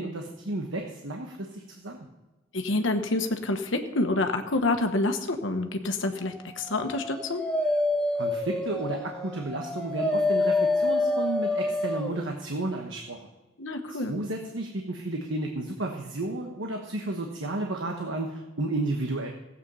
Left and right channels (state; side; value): normal; both; correlation 0.54